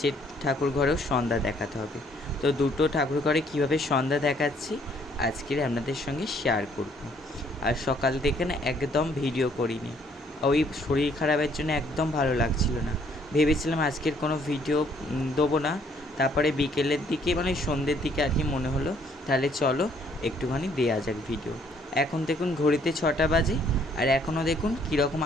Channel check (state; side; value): normal; both; correlation 0.64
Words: ঠাকুর ঘরেও সন্ধ্যা দেখাতে হবে। তো দুটো ঠাকুর ঘরে কীভাবে সন্ধ্যা দেখাচ্ছি আজকের আপনাদের সঙ্গে শেয়ার করব। আর সকাল থেকে না একদম ভিডিও করিনি, ওই শরীর খারাপের জন্য একদম ভালো লাগছিল না। ভেবেছিলাম আজকের কোনো ভিডিও দেবো না, তারপরে বিকেলের দিকে মানে সন্ধ্যের দিকে আর কি মনে হলো তাহলে চলো একটুখানি দেয়া যাক ভিডিও। এখন দেখুন ঘড়িতে 6টা বাজে, আর এখনও দেখুন কীরকম